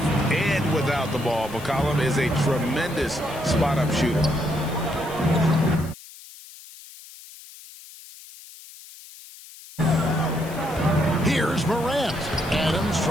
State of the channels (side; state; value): left; noise; hiss, 18 dB below the sound